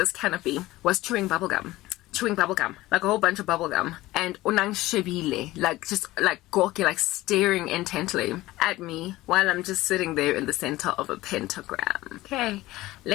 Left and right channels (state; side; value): quieter; right; 17.7 dB